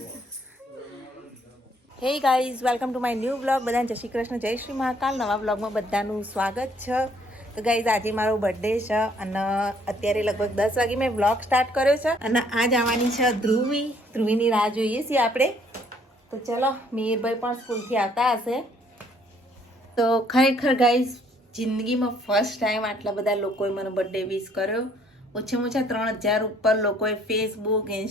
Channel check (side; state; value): both; normal; correlation 0.64